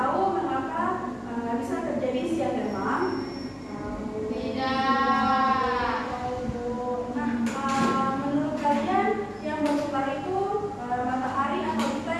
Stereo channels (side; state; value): both; identical; correlation 1.00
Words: mengapa bisa terjadi siang dan malam? Tidak. Nah, menurut kalian yang berputar itu matahari atau kita